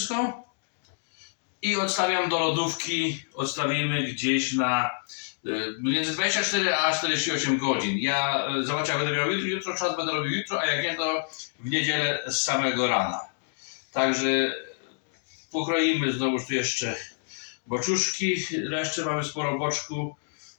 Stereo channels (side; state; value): right; silent; digital silence